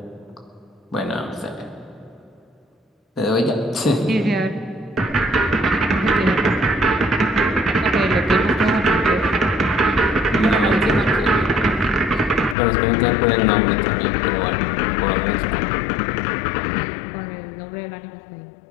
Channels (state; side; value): drops out; right; at 12.6 s